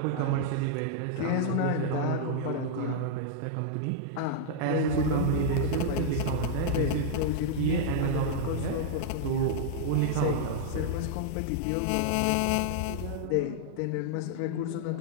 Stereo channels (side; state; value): both; different; correlation -0.01